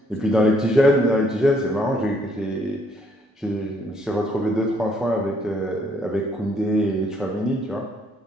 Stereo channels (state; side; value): normal; both; correlation 0.68